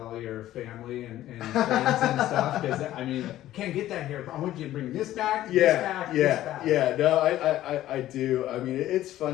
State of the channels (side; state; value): right; quieter; 13.9 dB